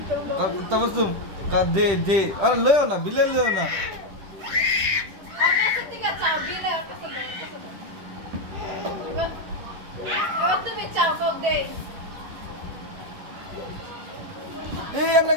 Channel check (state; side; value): late; left; 10 ms